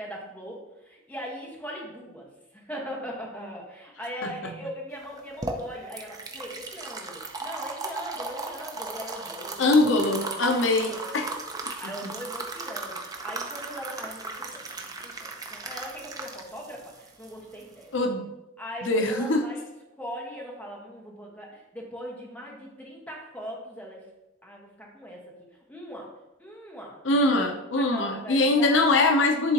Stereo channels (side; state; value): both; normal; correlation 0.27